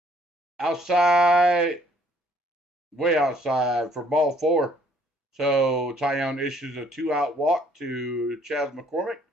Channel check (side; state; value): both; normal; correlation 0.62